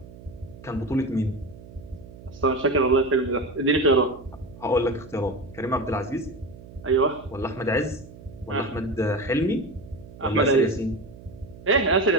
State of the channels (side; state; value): right; noise; hum, 18 dB below the sound